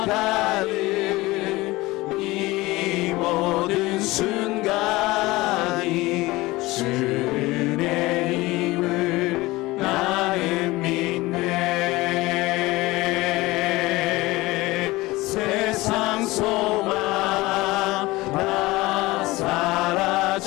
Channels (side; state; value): right; quieter; 20.2 dB